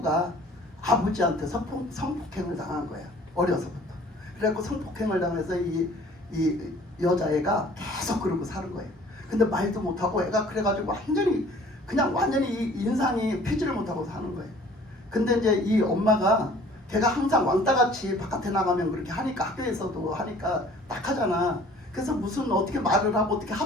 아버지한테 성폭행을 당한 거야. 어려서부터. 그래갖고 성폭행을 당해서 이 여자애가 계속 그러고 사는 거예요. 근데 말도 못하고 애가 그래가지고 완전히 이 인상이 피지를 못하고 사는 거예요. 근데 이제 이 엄마가 걔가 항상 왕따같이 바깥에 나가면 그렇게 하니까 학교에서도 하니까 딱하잖아. 그래서 무슨 어떻게 말을 하고 어떻게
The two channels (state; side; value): normal; both; correlation 0.52